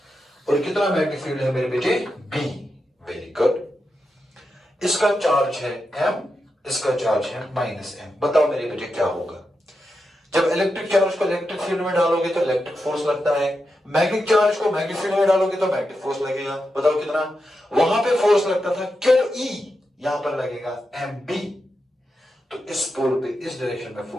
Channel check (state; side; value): normal; both; correlation 0.88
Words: और कितना मैग्नेटिक फील्ड है मेरे बेटे? B. Very good. इसका चार्ज है m, इसका चार्ज है -m। बताओ मेरे बेटे क्या होगा? जब इलेक्ट्रिक चार्ज को इलेक्ट्रिक फील्ड में डालोगे तो इलेक्ट्रिक फोर्स लगता है, मैग्नेटिक चार्ज को मैग्नेटिक फील्ड में डालोगे तो मैग्नेटिक फोर्स लगेगा। बताओ कितना? वहां पे फोर्स लगता था QE, यहां पर लगेगा MB। तो इस पोल पे इस डायरेक्शन में